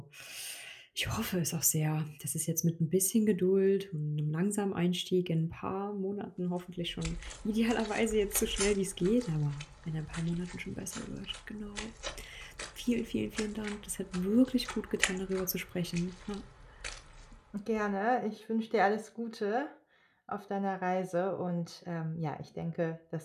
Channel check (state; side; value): identical; both; correlation 1.00